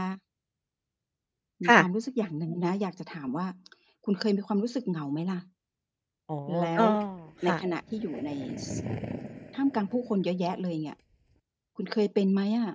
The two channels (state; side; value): identical; both; correlation 1.00